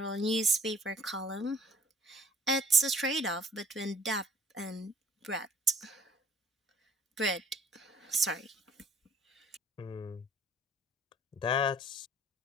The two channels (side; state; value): both; normal; correlation 0.51